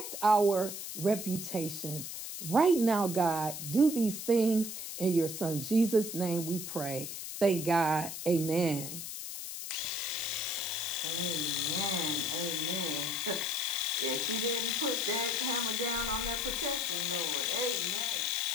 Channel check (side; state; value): left; noise; hiss, 7 dB below the sound